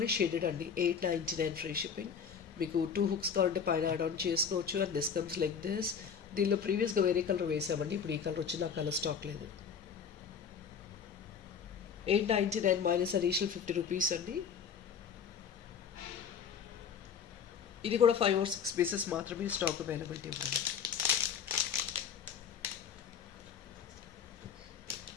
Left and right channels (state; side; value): quieter; right; 6.8 dB